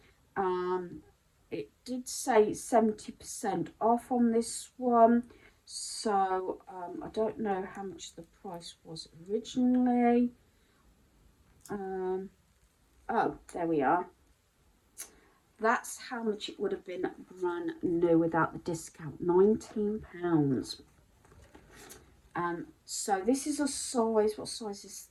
It did say 70% off on this one, so I don't know how much the price was originally. Oh, there we are. That's how much it would have been brand new without the discount, £19. So this is a size, what size is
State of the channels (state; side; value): identical; both; correlation 1.00